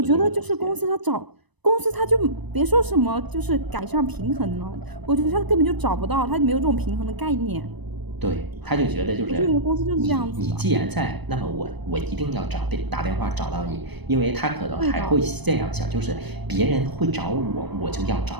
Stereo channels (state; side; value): late; left; 1.0 ms